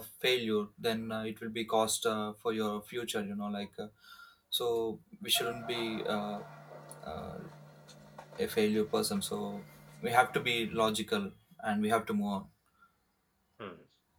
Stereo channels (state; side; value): identical; both; correlation 1.00